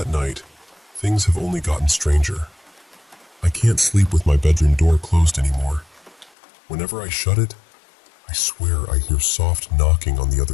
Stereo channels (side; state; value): right; drops out; at 6.3 s